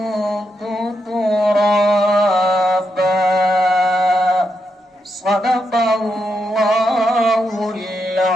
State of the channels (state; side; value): normal; both; correlation 0.83